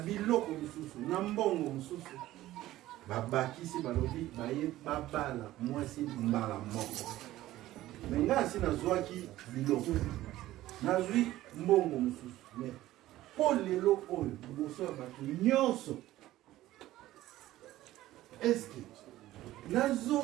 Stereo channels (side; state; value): left; quieter; 15.3 dB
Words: lisusu na mbongo mosusu babakisi balobi baye babala mwasi mbala moko me nga asi nazwaki biloko nazwi mbongo mosusu me mpo lelo oyo liboso ya bato nyonso eske